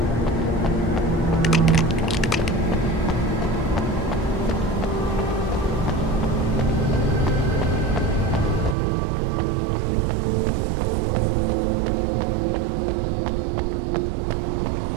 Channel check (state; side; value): drops out; left; at 8.8 s